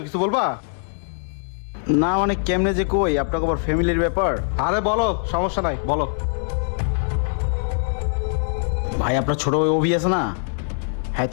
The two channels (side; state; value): right; silent; digital silence